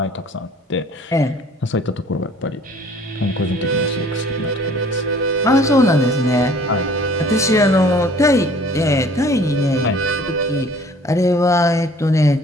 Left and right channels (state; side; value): normal; both; correlation 0.52